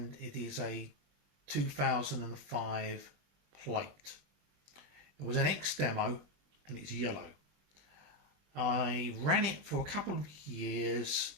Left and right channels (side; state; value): left; late; 21 ms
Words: it is a 2005 plate. It was an X demo and it's yellow. I ran it for a couple of years,